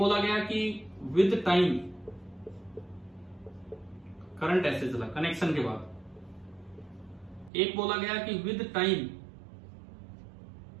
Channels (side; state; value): left; drops out; at 7.5 s